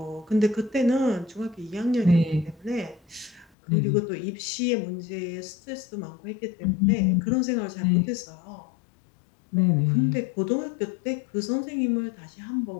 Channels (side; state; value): right; drops out; at 3.5 s